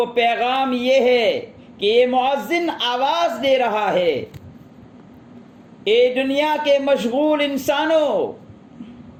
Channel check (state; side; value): identical; both; correlation 1.00